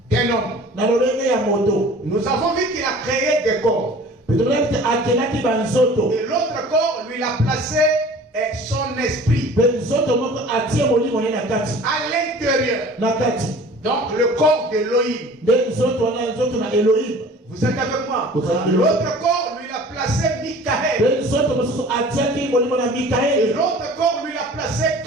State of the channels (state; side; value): normal; both; correlation 0.45